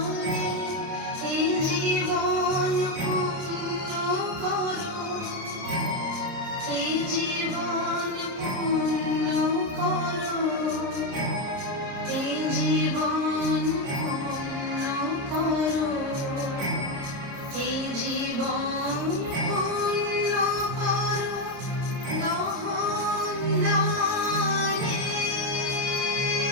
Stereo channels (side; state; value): left; late; 30 ms